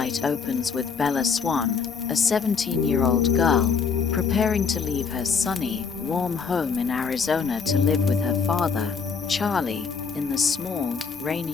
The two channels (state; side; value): quieter; right; 5.7 dB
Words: opens with Bella Swan, a 17-year-old girl, preparing to leave her sunny, warm home in Arizona to live with her father, Charlie, in the small,